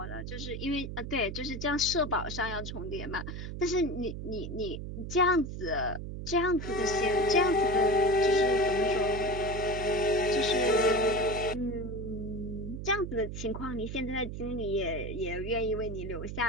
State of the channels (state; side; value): noise; right; hum, 7 dB below the sound